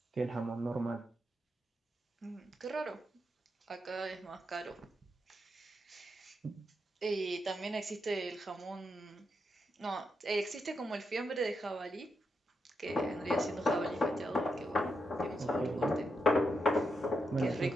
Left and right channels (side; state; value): both; normal; correlation 0.84